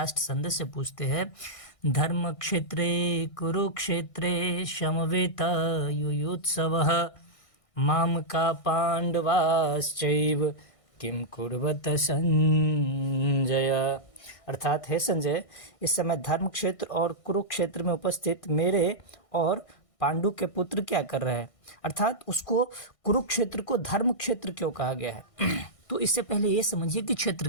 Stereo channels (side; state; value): right; late; 1.6 ms